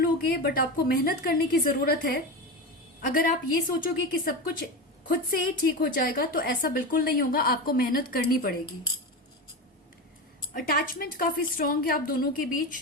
बट आपको मेहनत करने की जरूरत है। अगर आप ये सोचोगे कि सब कुछ खुद से ही ठीक हो जाएगा तो ऐसा बिल्कुल नहीं होगा, आपको मेहनत करनी पड़ेगी। अटैचमेंट काफी स्ट्रांग है आप दोनों के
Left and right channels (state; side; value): normal; both; correlation 0.21